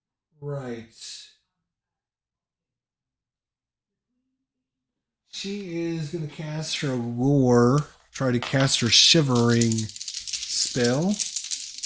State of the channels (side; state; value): both; identical; correlation 1.00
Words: Right. She is going to cast her lure, try to cast her shivering spell.